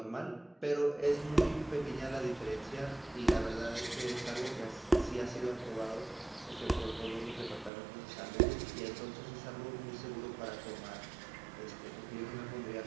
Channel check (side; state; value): left; drops out; at 7.7 s